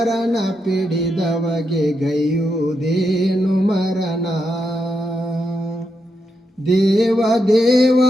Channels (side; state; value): both; normal; correlation 0.83